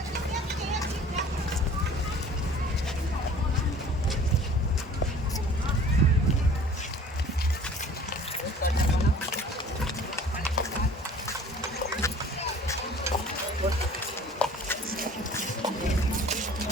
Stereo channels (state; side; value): normal; both; correlation 0.48